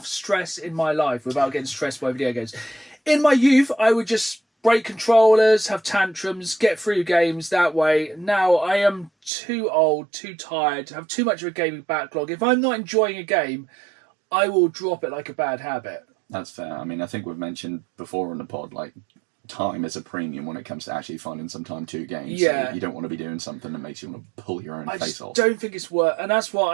stress in my life without getting stressed by video games. In my youth, I would just break controllers, have tantrums, get through games that way. Now I am too old, too tired, have too much of a gaming backlog. If I'm not enjoying a game, I will drop it like a bad habit. That's fair. I mean, I think we've mentioned before on the pod, like, time is a premium when it comes to actually finding some time to games. Yeah. So you don't want to be doing something that makes you want to pull your own I face just off. don't think it's worth, and that's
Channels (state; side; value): drops out; left; at 9.3 s